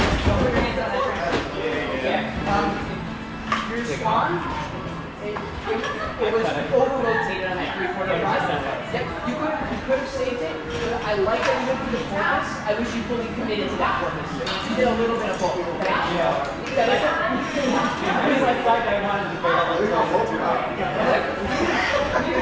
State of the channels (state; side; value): identical; both; correlation 1.00